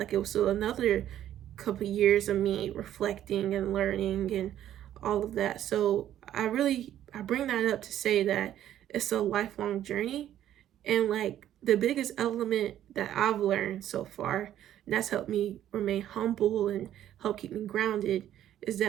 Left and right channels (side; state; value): left; quieter; 11.6 dB